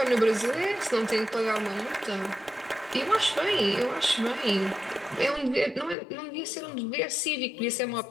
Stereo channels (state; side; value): drops out; right; at 6.0 s